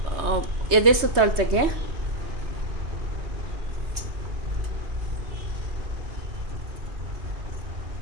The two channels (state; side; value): late; left; 3.2 ms